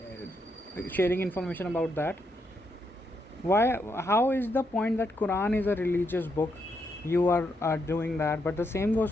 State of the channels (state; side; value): normal; both; correlation 0.79